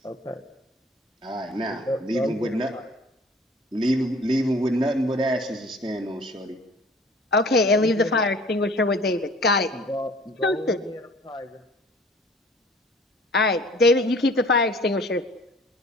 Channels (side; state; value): both; normal; correlation 0.50